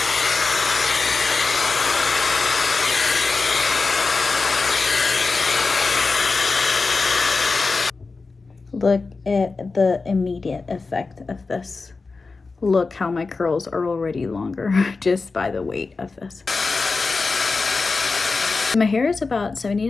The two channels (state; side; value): quieter; right; 4.1 dB